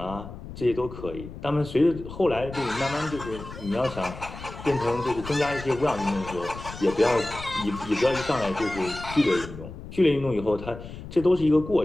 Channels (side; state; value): left; noise; rumble, 12 dB below the sound